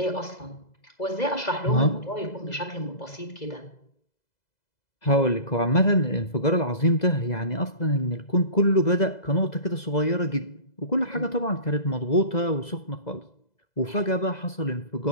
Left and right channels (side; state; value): right; late; 2.0 ms